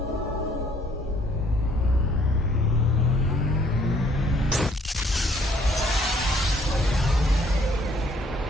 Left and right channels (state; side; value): normal; both; correlation 0.63